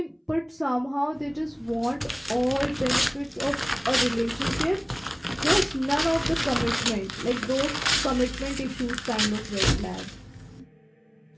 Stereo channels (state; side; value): identical; both; correlation 1.00